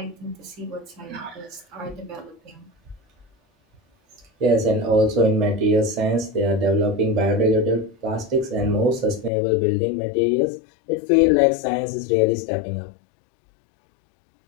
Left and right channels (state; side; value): drops out; right; at 9.3 s